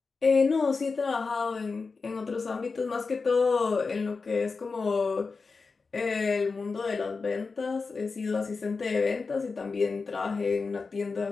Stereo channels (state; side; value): quieter; right; 4.5 dB